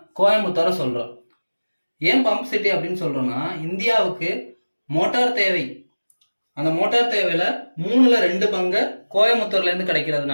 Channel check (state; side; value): inverted; both; correlation -1.00